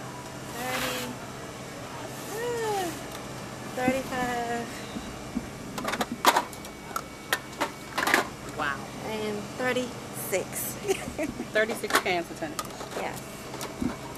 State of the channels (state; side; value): identical; both; correlation 1.00